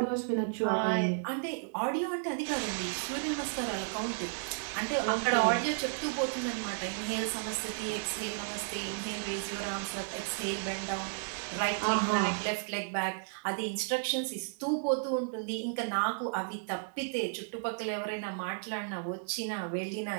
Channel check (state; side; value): silent; left; digital silence